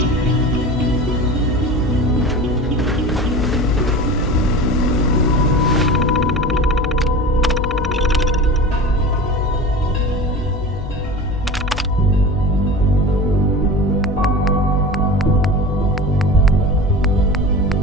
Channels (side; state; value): both; normal; correlation 0.33